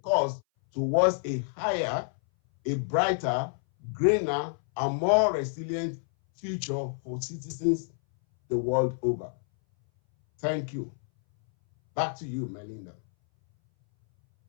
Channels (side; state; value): right; silent; 59 dB below the other